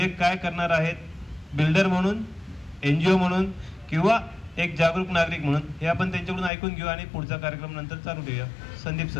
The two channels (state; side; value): drops out; right; at 6.5 s